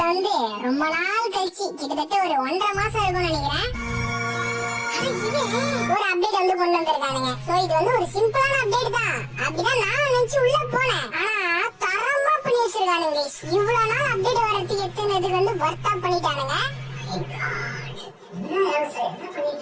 வந்து ரொம்ப நாள் கழிச்சு கிட்டத்தட்ட ஒரு 1.5 மாசம் இருக்கும்னு நினைக்கிறேன் ஒரு அப்டேட் வந்து கொண்டு வந்திருக்கானுங்க. சோ இது வந்து ஒரு சிம்பிளான அப்டேட் தான், அப்படிதான் நான் நினைச்சு உள்ள போனேன். ஆனா தரமா பண்ணி வச்சிருக்கானுங்க गाइस. இவ்வளவு நாள் அப்டேட் வரதுக்கு எத்தனைக்கு வந்து வர்த்தா பண்ணிட்டானுங்க.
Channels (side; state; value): both; identical; correlation 1.00